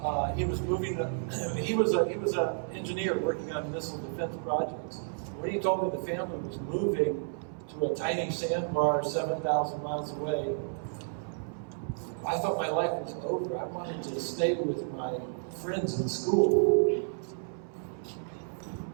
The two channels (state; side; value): silent; left; 57 dB below the other